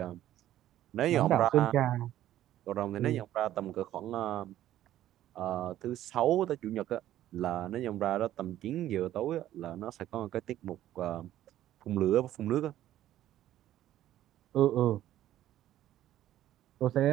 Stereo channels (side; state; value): left; quieter; 13.0 dB